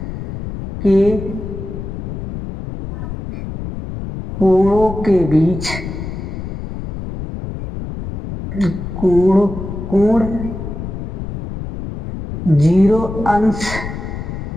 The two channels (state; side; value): noise; left; rumble, 7 dB below the sound